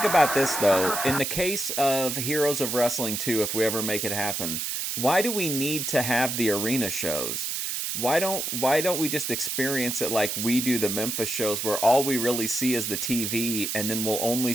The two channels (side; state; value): right; noise; hiss, 2 dB below the sound